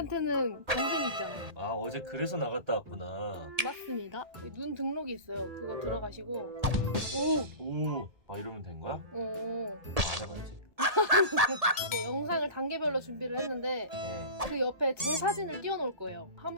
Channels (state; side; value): late; left; 1.7 ms